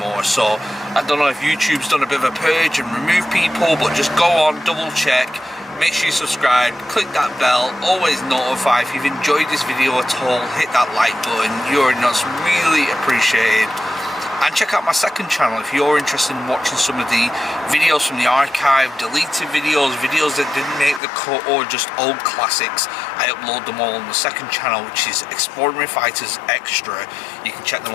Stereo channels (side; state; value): right; drops out; at 21.0 s